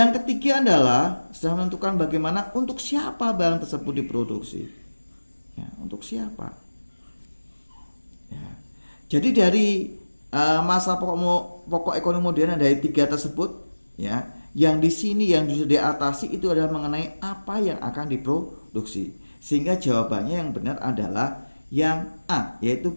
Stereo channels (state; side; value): inverted; both; correlation -1.00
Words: ketiga adalah setelah menentukan bagaimana, untuk siapa barang tersebut diproduksi ya, untuk siapa ya. Jadi dari masa pokok ekonomi modern dari 3 tersebut ya, yang di sini yang bisa diatasi itu adalah mengenai apa yang akan diproduksi. Sehingga jawabannya yang benar adalah yang A, yaitu